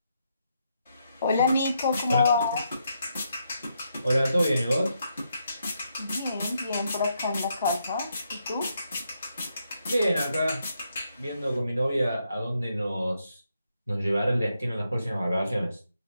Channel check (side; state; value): both; inverted; correlation -0.79